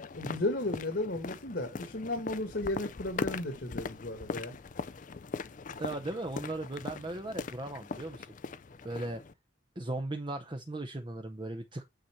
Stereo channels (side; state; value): both; normal; correlation 0.34